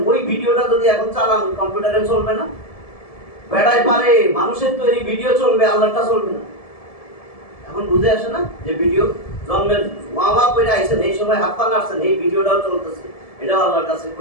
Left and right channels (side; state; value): right; late; 1.7 ms